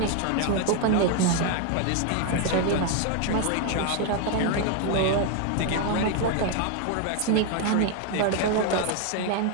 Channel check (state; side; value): different; both; correlation 0.01